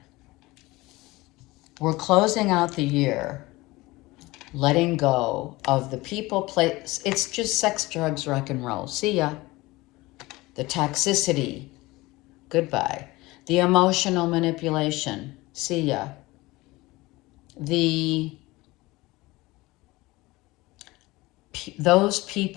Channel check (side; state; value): right; quieter; 20.7 dB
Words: we're closing out the year, letting go of the people, place, it's just sex, drugs, rock and roll. See ya. The toxicity, goodbye. The emotional manipulation, see ya. Those